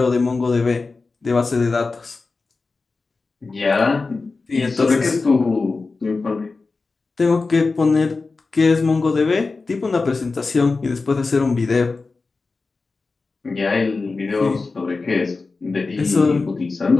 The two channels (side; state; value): right; quieter; 4.0 dB